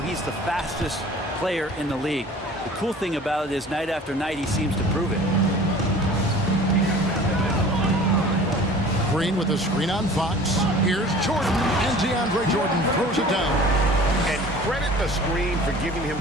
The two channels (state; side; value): normal; both; correlation 0.45